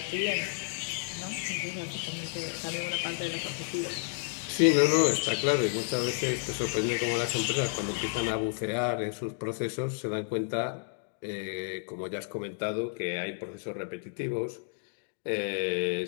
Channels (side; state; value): right; silent; digital silence